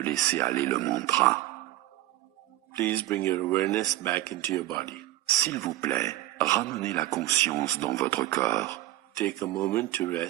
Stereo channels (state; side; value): quieter; left; 15.5 dB